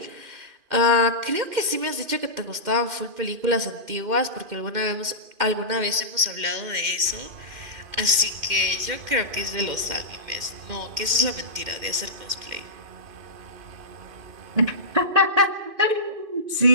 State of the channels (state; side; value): late; left; 2.1 ms